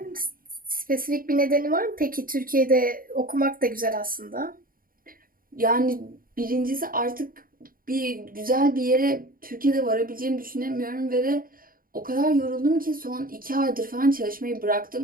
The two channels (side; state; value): left; late; 0.41 ms